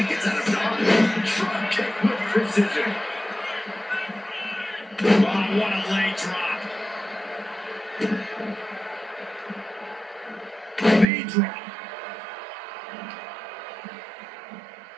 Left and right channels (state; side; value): drops out; left; at 11.1 s